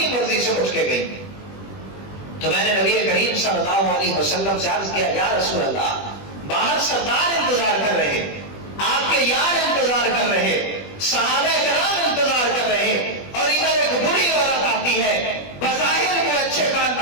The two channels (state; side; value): late; right; 20 ms